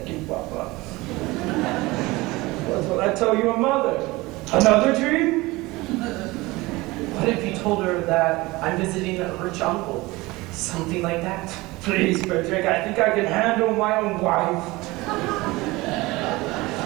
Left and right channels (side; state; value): left; quieter; 21.2 dB